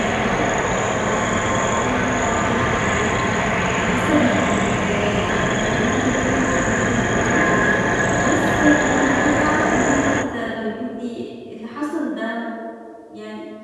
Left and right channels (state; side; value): identical; both; correlation 1.00